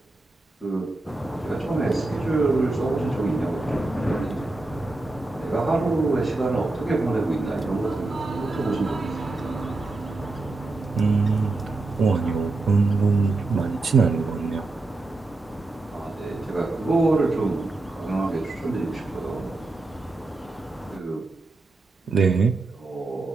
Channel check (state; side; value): quieter; left; 3.2 dB